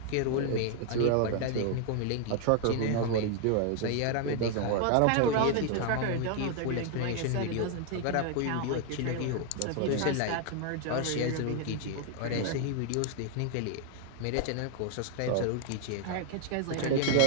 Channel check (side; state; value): both; different; correlation 0.00